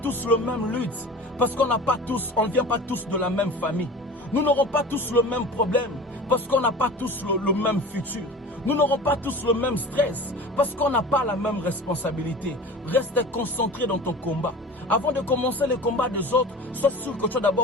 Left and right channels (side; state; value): both; normal; correlation 0.37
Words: le même lutte. Parce qu'on ne vient pas tous de la même famille. Nous n'aurons pas tous le même problème. Parce qu'on n'a pas tous le même futur. Nous n'aurons pas tous le même stress. Parce qu'on n'a pas la même responsabilité. Reste concentré dans ton combat. Avant de commencer le combat des autres, sois sûr que tu as